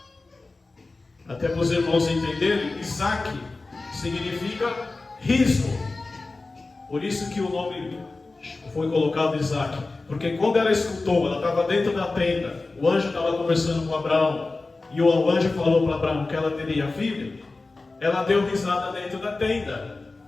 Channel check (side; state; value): right; quieter; 3.5 dB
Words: Até para os irmãos entenderem, Isaac significa riso. Por isso que o nome foi colocado Isaac. Porque quando ela escutou, ela estava dentro da tenda, o anjo estava conversando com Abraão, e o anjo falou para Abraão que ela teria filho, ela deu risada dentro da tenda.